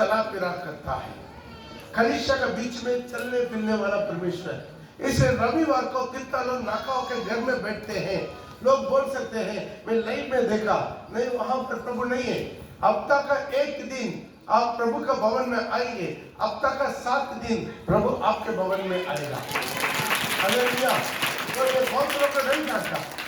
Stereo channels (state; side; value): identical; both; correlation 1.00